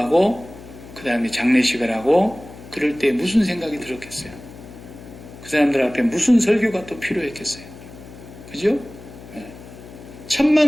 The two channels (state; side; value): noise; left; hum, 17 dB below the sound